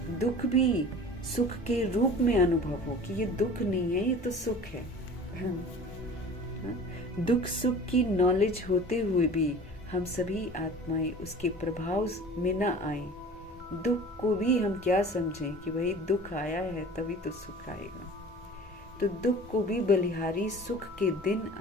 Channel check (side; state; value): both; normal; correlation 0.42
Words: दुख भी सुख के रूप में अनुभव हो कि ये दुख नहीं है, ये तो सुख है। दुख सुख की नॉलेज होते हुए भी हम सभी आत्माएं उसके प्रभाव में न आए। दुख को भी हम क्या समझें कि भाई दुख आया है तभी तो सुख आएगा। तो दुख को भी बलिहारी सुख के दिन